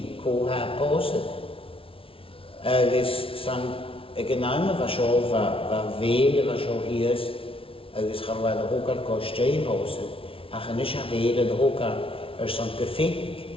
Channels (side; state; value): right; late; 0.26 ms